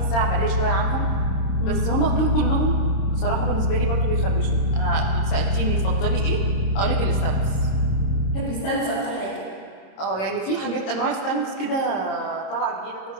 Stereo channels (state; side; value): late; right; 26 ms